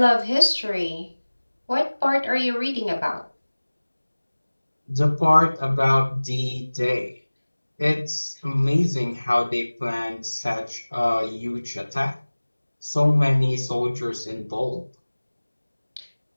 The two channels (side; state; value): both; inverted; correlation -1.00